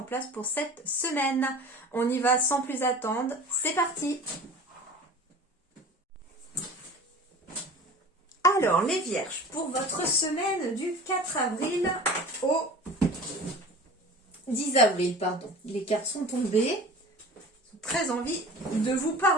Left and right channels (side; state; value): both; normal; correlation 0.39